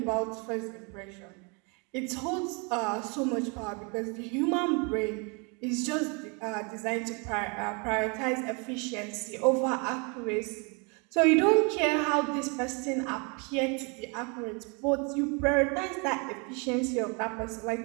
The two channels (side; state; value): left; quieter; 33.0 dB